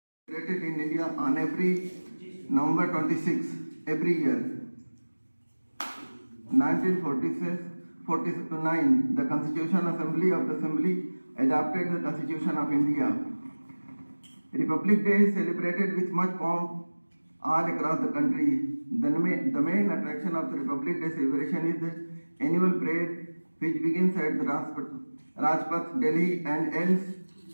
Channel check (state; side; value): inverted; both; correlation -1.00